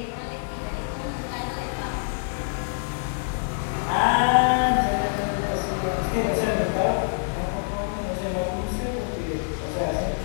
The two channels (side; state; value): right; silent; 61 dB below the other